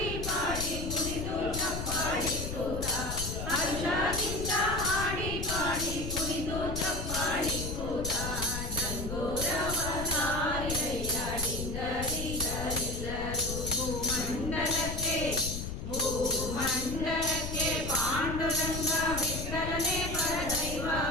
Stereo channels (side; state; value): left; noise; rumble, 5 dB below the sound